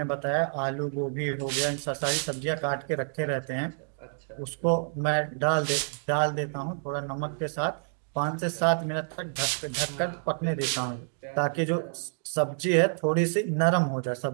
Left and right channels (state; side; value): silent; left; digital silence